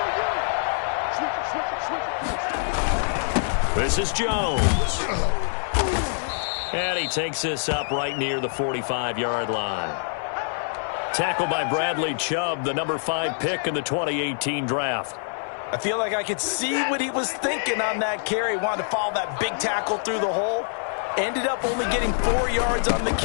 This is Jones. And he takes this up right near the 45-yard line. Tackled by Bradley Chubb, the number 5 pick in the 2018 draft. I feel like I could see what he was thinking on that carry. Wanted to follow that big tackle through the hole. Ended up only getting 4 yards on the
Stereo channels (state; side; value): silent; right; 60 dB below the other